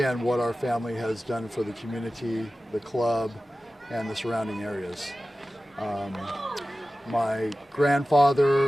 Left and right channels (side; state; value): both; normal; correlation 0.96